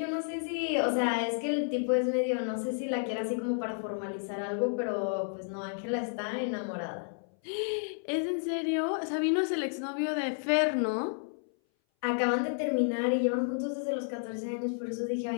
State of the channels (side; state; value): right; silent; 57 dB below the other